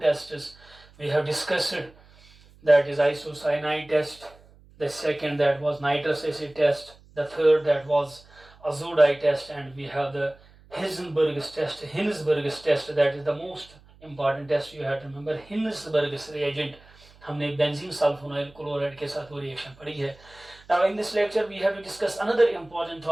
we have discussed. That is isocyanide test, the second that was nitrous acid test, the third that was azodite test, and we have the Hinsberg's test, that is the most important test you have to remember. Hinsberg's reagent, हमने benzene sulphonyl chloride के साथ वो reaction पढ़ी है. Now in this lecture we have to discuss another important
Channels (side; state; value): right; noise; hum, 26 dB below the sound